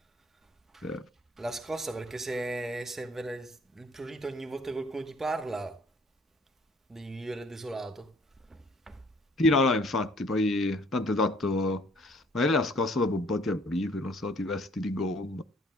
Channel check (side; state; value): both; normal; correlation 0.59